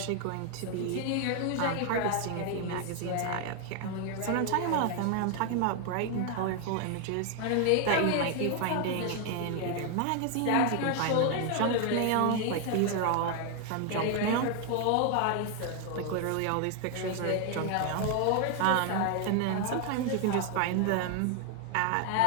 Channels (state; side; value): different; both; correlation 0.00